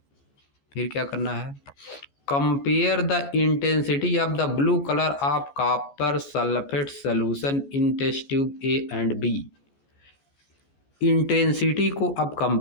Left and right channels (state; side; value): late; right; 14 ms